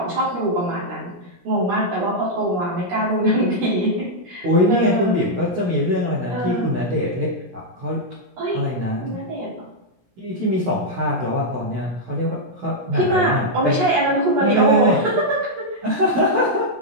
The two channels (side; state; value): left; late; 17 ms